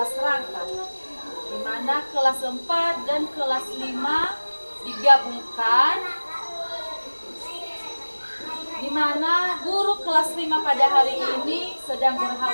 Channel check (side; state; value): both; inverted; correlation -1.00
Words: rangka, di mana kelas 4 dan kelas 5 digabungkan, di mana guru kelas 5 pada hari ini sedang